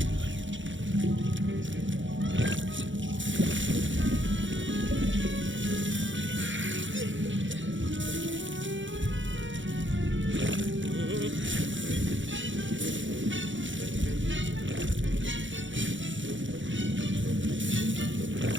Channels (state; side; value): late; left; 0.55 ms